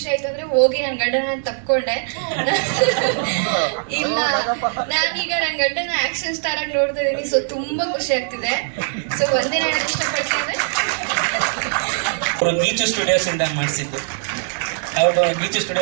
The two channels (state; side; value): silent; left; digital silence